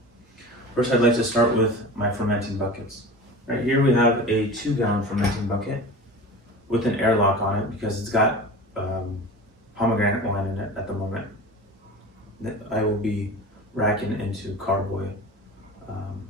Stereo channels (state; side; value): normal; both; correlation 0.34